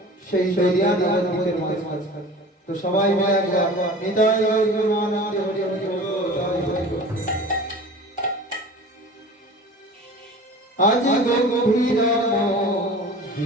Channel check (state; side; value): normal; both; correlation 0.39